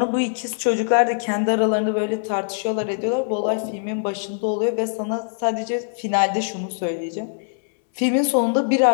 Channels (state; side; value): silent; right; 64 dB below the other